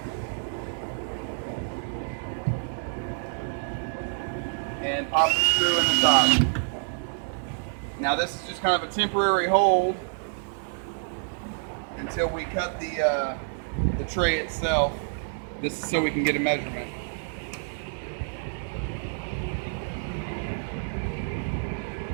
And pop the screw in the top. Now this is just kind of a temporary hold until we cut the tray itself. This is so we can get a measurement.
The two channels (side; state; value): left; silent; digital silence